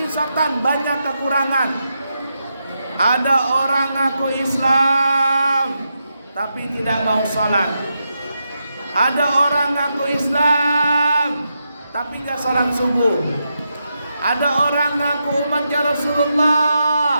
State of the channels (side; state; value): both; inverted; correlation -0.85